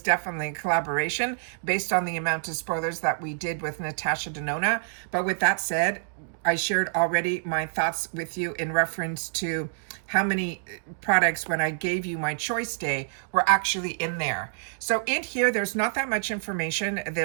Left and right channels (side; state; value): left; silent; digital silence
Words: definitely a collaboration based on the amount of spoilers that we did with Natasha Denona. But with that said, I shared already my thoughts with you in reference to how many products, when I gave you my choice day, were actually in there. So in here, there's not that much information.